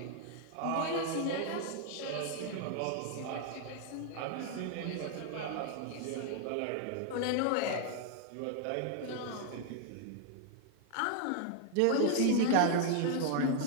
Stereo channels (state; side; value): different; both; correlation 0.00